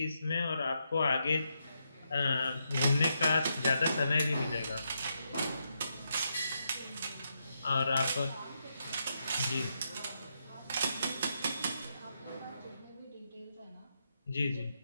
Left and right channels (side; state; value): both; inverted; correlation -0.82